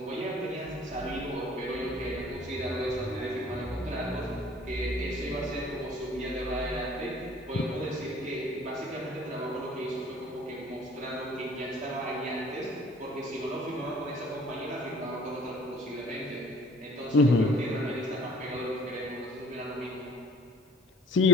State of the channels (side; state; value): both; normal; correlation 0.53